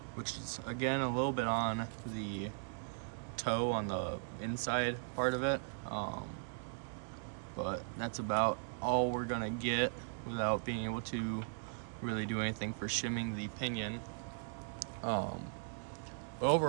which is again a little bit on the toe on the inside part of it. But that's about all we're gonna get without being able to really do anything for shimming the pinion. But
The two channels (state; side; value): silent; left; digital silence